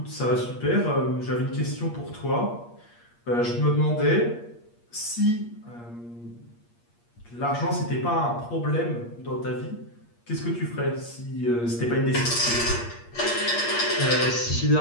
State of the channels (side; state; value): right; late; 8.5 ms